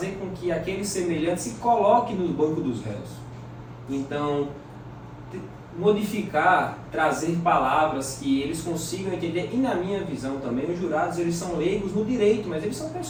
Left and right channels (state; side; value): identical; both; correlation 1.00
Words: com que aquele semelhante se coloque no banco dos réus. Então, modificar, trazer palavras que eles consigam entender, e na minha visão também, os jurados eles são leigos no direito, mas eles são